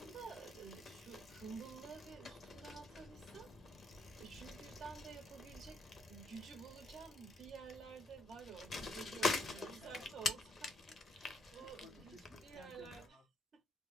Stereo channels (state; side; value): normal; both; correlation 0.74